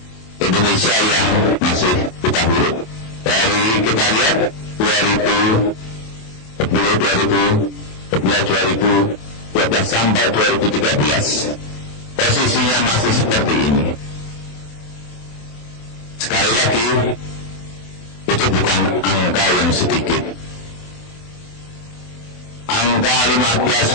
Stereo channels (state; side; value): late; right; 27 ms